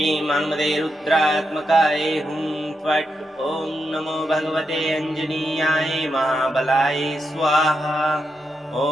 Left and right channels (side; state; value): both; normal; correlation 0.85